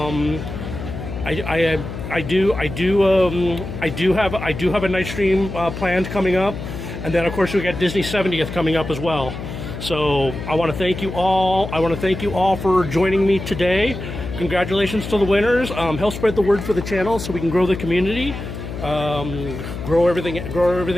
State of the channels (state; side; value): noise; left; hum, 8 dB below the sound